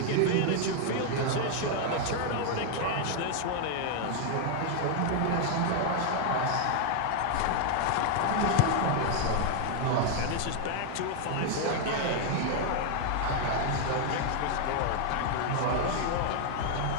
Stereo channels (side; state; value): both; different; correlation 0.00